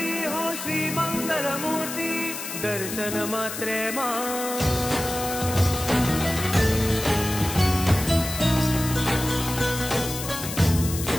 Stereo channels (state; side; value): noise; left; hiss, 7 dB below the sound